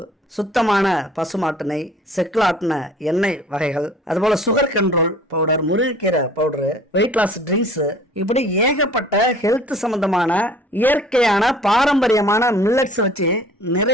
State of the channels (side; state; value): both; normal; correlation 0.50